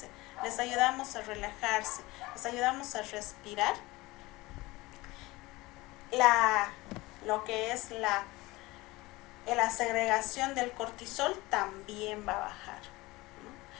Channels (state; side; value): quieter; right; 20.9 dB